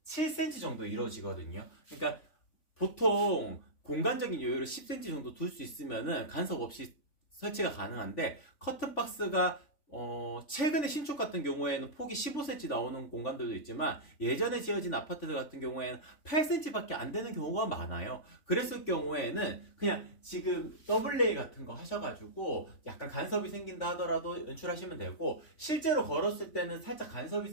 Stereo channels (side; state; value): right; late; 3.4 ms